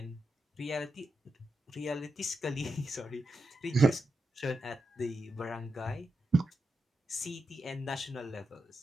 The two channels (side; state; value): both; normal; correlation 0.87